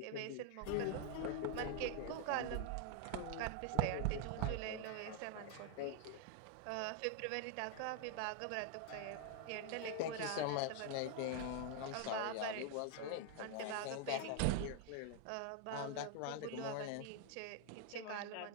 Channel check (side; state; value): both; different; correlation 0.00